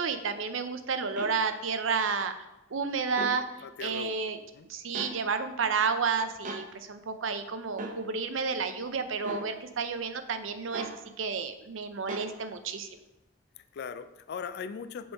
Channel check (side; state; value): left; quieter; 4.4 dB